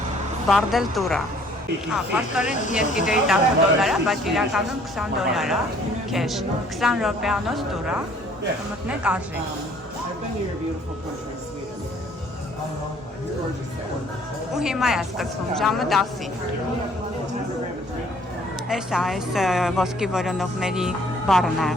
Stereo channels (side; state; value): both; normal; correlation 0.58